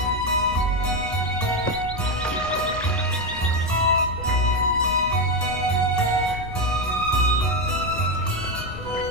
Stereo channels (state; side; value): noise; left; rumble, 14 dB below the sound